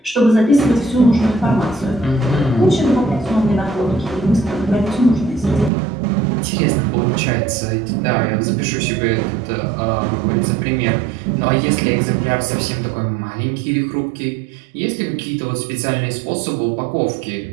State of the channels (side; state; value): left; drops out; at 5.7 s